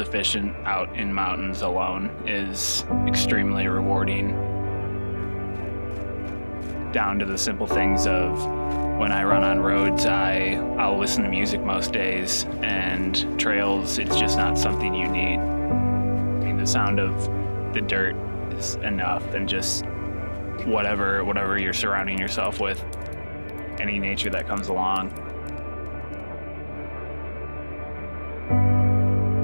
out in mountains alone, is extremely rewarding. Down to the simple things of when I run on roads, I'll listen to music most days, and trails, it's just not something you need. I mean, the sound of the dirt is enough, and just whatever you're surrounding yourself with, any nature that comes along.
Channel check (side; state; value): both; inverted; correlation -1.00